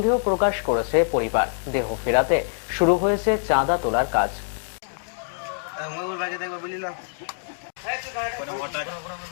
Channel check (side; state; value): right; silent; digital silence